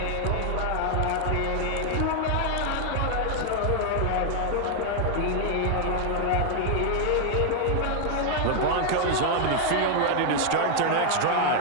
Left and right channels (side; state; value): both; different; correlation 0.00